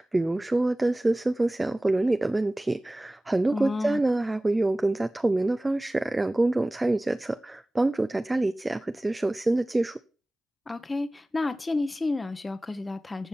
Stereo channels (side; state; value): both; normal; correlation 0.98